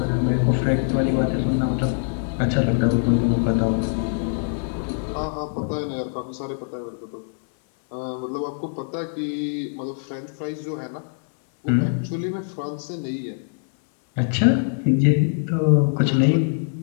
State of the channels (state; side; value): silent; right; 63 dB below the other